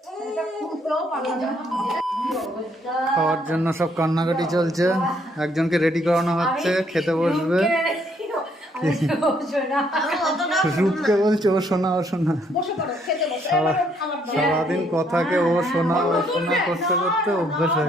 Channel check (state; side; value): normal; both; correlation 0.69